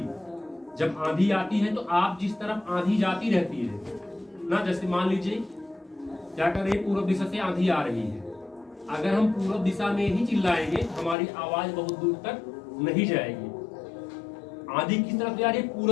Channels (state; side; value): drops out; right; at 11.2 s